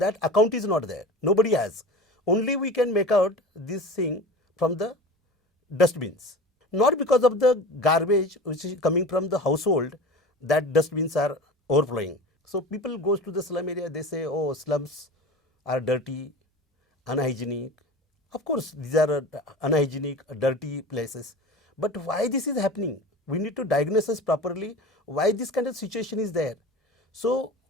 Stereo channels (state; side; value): normal; both; correlation 0.35